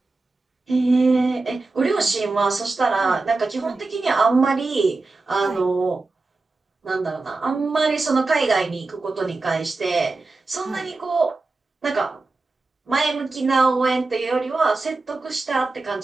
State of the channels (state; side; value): quieter; left; 3.5 dB